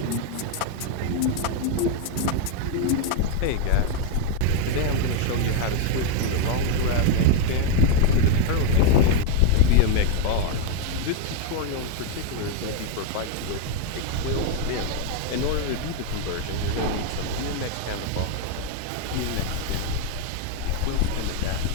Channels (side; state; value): both; different; correlation 0.01